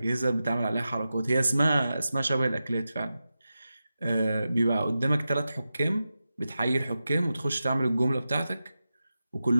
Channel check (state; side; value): inverted; both; correlation -0.92